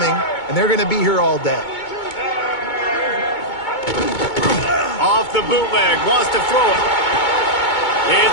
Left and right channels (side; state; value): right; late; 2.2 ms